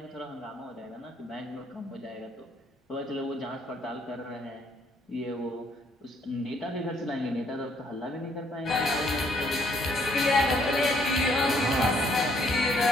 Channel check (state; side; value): normal; both; correlation 0.68